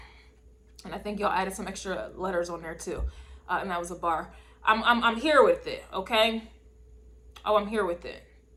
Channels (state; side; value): identical; both; correlation 1.00